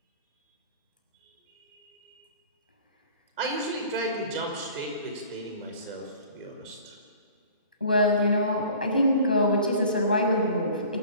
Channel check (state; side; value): inverted; both; correlation -0.46